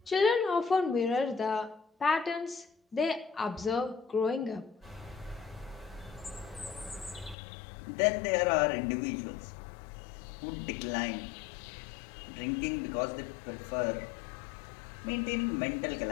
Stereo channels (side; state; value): right; drops out; at 7.4 s